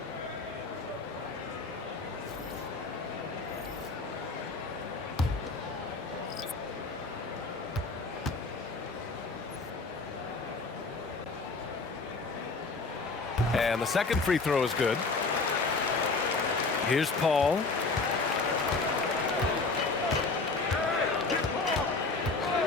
And the second free throw is good. Here's Paul.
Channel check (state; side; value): quieter; right; 3.9 dB